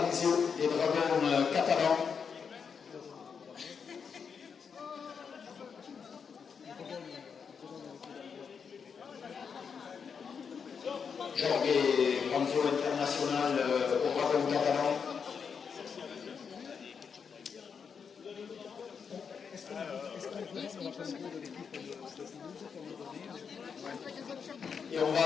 des Dragons catalans. Jorge Panzio international au Dragon catalan. Et on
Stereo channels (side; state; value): right; quieter; 6.3 dB